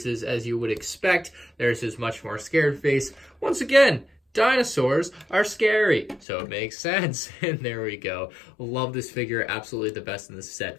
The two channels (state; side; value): drops out; right; at 6.2 s